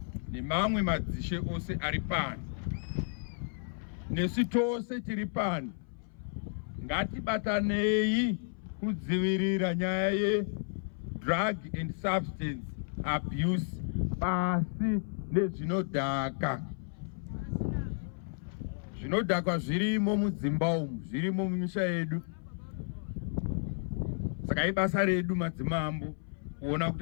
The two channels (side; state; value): right; silent; 56 dB below the other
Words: nemamwe madzishe ose ari pano, nesu tose tiri pano, ngatibatanei kudzivirira nyaya ye-drug and substance abuse pasi nezvinodhaka. Zvinodhaka zvirimo mudzimba umu, zvirimo mumisha yedu. Saka ibasa redu madzimambo kuona